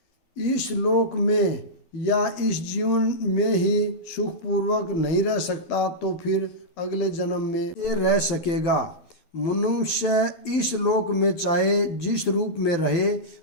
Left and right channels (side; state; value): right; late; 12 ms